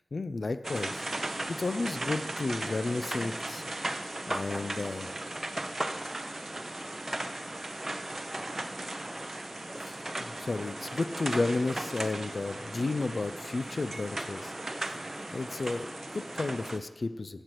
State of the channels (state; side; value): normal; both; correlation 0.96